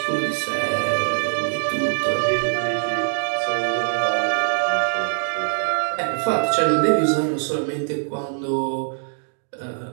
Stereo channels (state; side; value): silent; left; digital silence